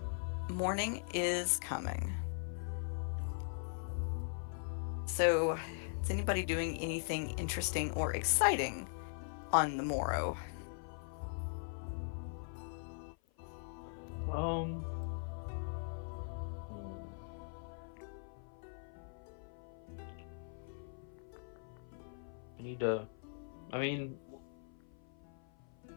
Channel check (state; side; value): silent; right; 51 dB below the other